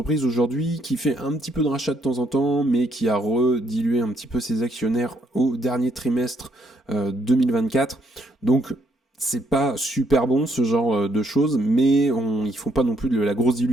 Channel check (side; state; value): both; normal; correlation 0.72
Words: aujourd'hui qui fait un petit peu de rachat de temps en temps, mais qui a redilué un petit peu ses actionnaires au dernier trimestre 2024. Donc c'est pas super bon ce genre de choses, mais ils font pas non plus de la grosse